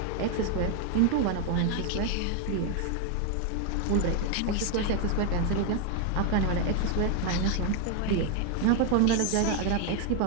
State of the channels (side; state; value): both; different; correlation 0.01